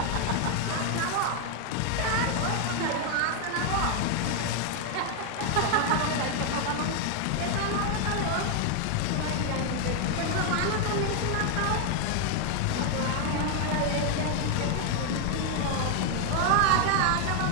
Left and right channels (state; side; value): different; both; correlation 0.01